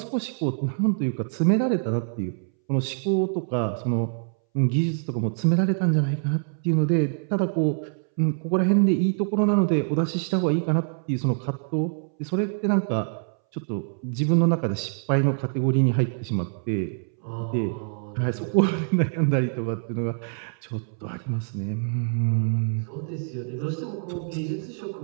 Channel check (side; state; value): left; silent; 61 dB below the other